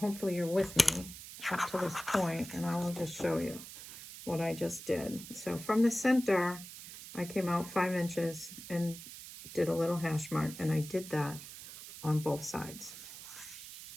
you're with me up to this point, and I will just show you what I just did. So from the center, I came out 5 inches and did a little hash mark, and I did that on both sides.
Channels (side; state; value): right; noise; hiss, 13 dB below the sound